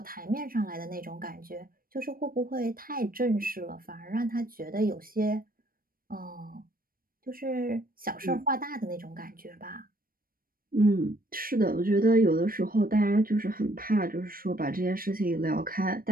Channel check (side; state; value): left; late; 0.42 ms